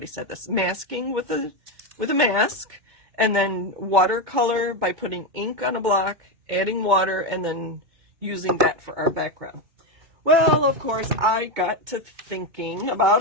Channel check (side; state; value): left; late; 2.2 ms